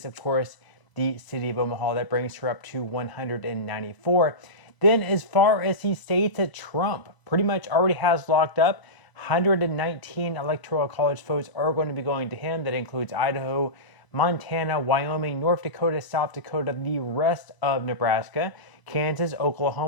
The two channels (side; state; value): right; late; 1.0 ms